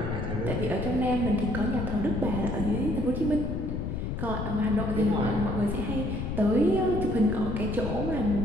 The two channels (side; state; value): left; noise; rumble, 3 dB below the sound